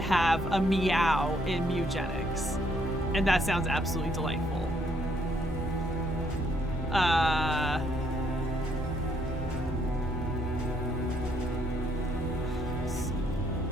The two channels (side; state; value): both; normal; correlation 0.70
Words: a meow in Mugenics, and that sounds absolutely delightful.